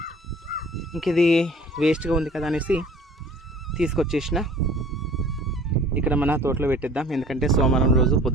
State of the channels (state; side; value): normal; both; correlation 0.49